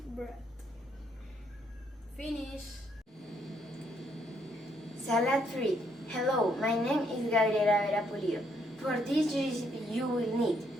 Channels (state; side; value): normal; both; correlation 0.72